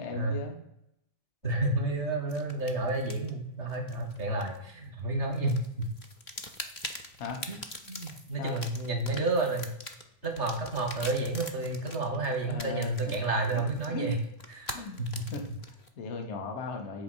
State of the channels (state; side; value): late; right; 3.3 ms